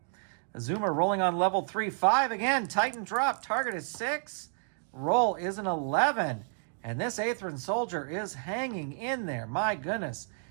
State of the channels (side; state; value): left; silent; 57 dB below the other